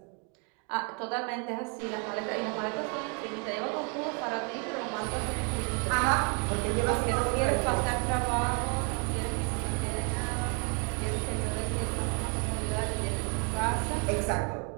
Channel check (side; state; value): left; quieter; 36.6 dB